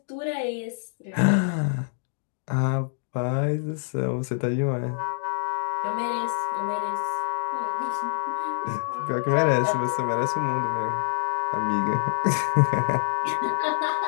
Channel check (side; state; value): right; silent; digital silence